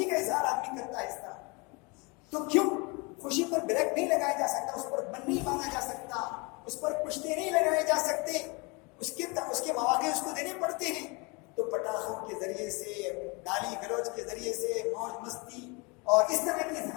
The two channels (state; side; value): quieter; right; 29.1 dB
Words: کا اظہار آدمی کرتا ہے اس طرح. تو کیوں خوشی پر بریک نہیں لگایا جا سکتا، اس پر بن نہیں مانا جا سکتا، اس پر پشتے نہیں لگائے جا سکتے، اس کے مواقع اس کو دینے پڑتے ہیں. تو پٹاخوں کے ذریعے سے، گالی گلوچ کے ذریعے سے، موج مستی اور اس طرح کے